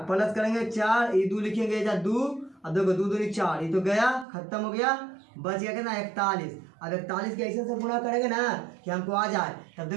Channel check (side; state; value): left; drops out; at 4.2 s